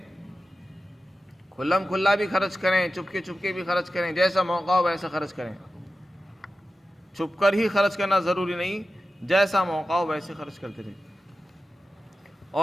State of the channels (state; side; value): normal; both; correlation 0.93